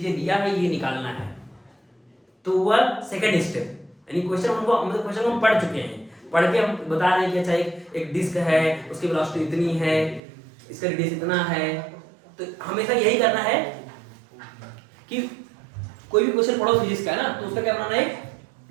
दिया है ये निकालना है, तो वह सेकंड स्टेप, यानी क्वेश्चन हमको मतलब क्वेश्चन हम पढ़ चुके हैं, पढ़ के हम बता रहे हैं कि अच्छा एक डिस्क है, उसकी वेलोसिटी इतनी है, इसका रेडियस इतना है। तो हमेशा यही करना है कि कोई भी क्वेश्चन पढ़ो फिजिक्स का है ना, तो उसका क्या बनाना है, एक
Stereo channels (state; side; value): drops out; left; at 10.2 s